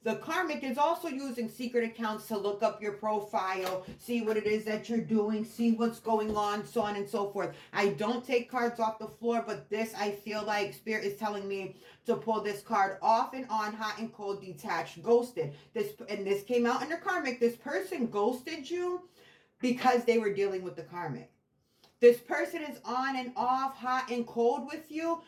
The karmic is also using secret accounts to look up your profile, see what it is that you're doing, see what's going on, so on and so forth. I don't take cards off the floor, but this, I feel like Spirit is telling me to pull this card: off and on, hot and cold, detached, ghosted. This came out in the karmic. This person ghosted you because they were dealing with the karmic. This person is on and off, hot and cold with you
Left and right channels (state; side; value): identical; both; correlation 1.00